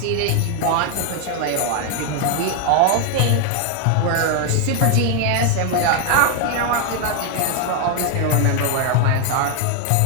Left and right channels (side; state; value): both; different; correlation 0.01